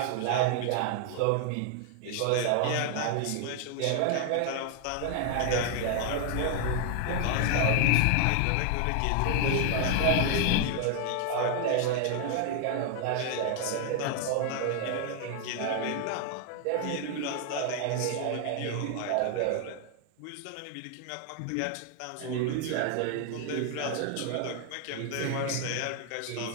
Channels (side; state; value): both; different; correlation 0.00